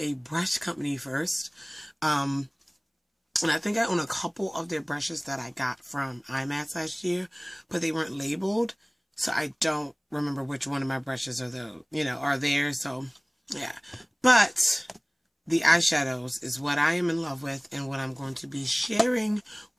brush company first. And I think I own a couple of their brushes that I got from IMATS last year, but they weren't labeled. So I don't remember which one of my brushes are there. So, yeah. But the eyeshadows is what I am in love with and what I'm going to be sharing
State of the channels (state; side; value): identical; both; correlation 1.00